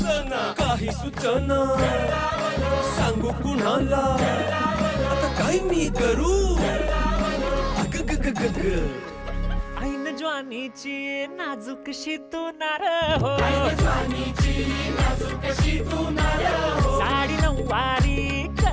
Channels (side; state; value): both; identical; correlation 1.00